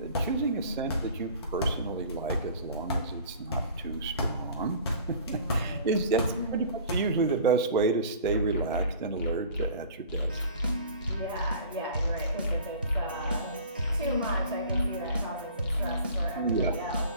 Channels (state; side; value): inverted; both; correlation -0.44